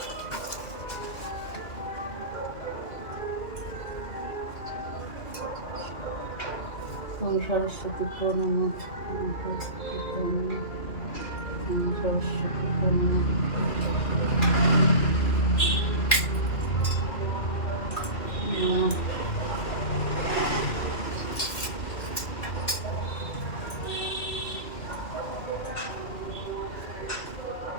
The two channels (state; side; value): late; right; 2.5 ms